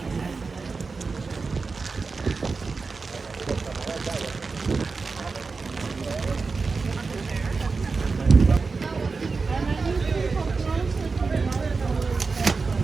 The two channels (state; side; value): quieter; left; 4.4 dB